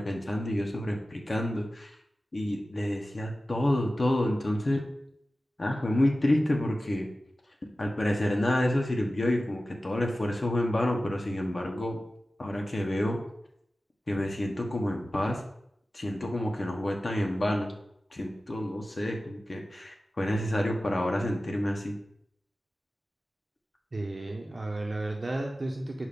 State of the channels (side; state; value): both; normal; correlation 0.95